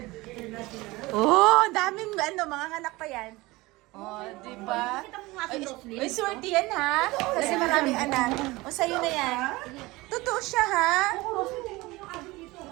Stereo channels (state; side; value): quieter; left; 21.1 dB